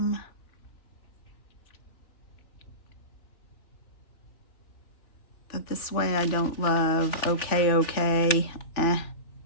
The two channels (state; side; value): late; right; 3.5 ms